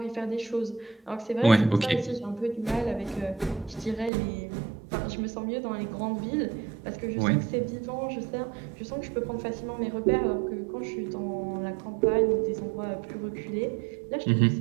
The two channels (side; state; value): left; drops out; at 4.1 s